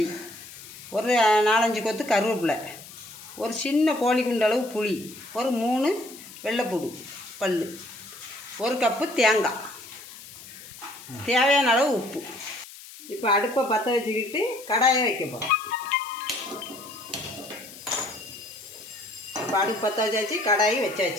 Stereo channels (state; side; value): noise; left; hiss, 16 dB below the sound